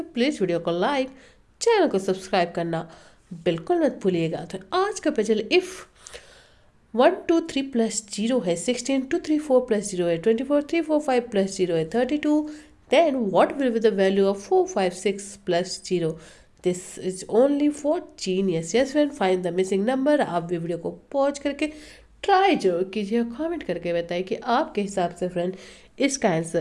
प्लीज़ वीडियो को लाइक, चैनल को सब्सक्राइब करना बिल्कुल मत भूलिएगा। तो आज का पजल इफ़ 1 2 3 प्लस 0 है 16, 2 3 4 प्लस 0 है 24, 3 4 5 प्लस 0 है 32, then what will be the value of 4 5 6 plus 0? This is only for genius. Yes friend, find the missing number. आप भी वीडियो को पॉज करके ट्राई जरूर कीजिए, कमेंट करके बताइए कि आपके हिसाब से फ्रेंड इसका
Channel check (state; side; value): identical; both; correlation 1.00